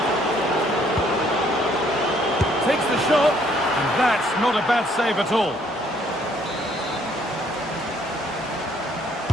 Takes the shot, and that's not a bad save at all.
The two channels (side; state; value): both; normal; correlation 0.64